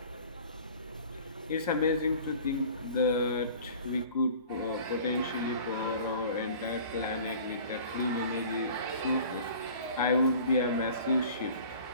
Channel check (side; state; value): both; inverted; correlation -0.45